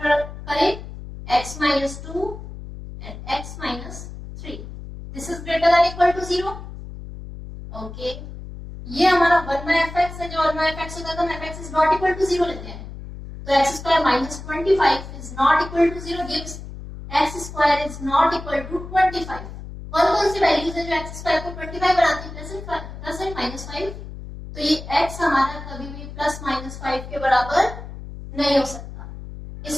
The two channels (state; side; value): noise; left; hum, 12 dB below the sound